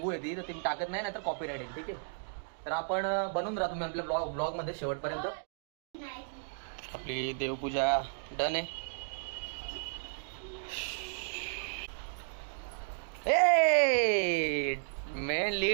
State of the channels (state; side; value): silent; left; digital silence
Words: येते तर ती टाकत नाही, तर कॉपीराइट येईल. ठीक आहे, तर आपण बनून राहा तुम्ही आपल्या ब्लॉग मध्ये शेवटपर्यंत. आपली देवपूजा डन आहे. मेन